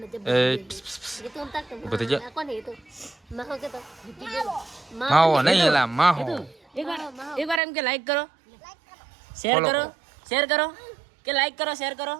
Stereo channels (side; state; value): left; drops out; at 7.6 s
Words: જબ એ એ તો તાક બધી જા કોને એ તો માહો કે તો માવો નહીં એલા માહો એકવાર એમ કે લાઈક કરો શેર કરો કે લાઈક કરો શેર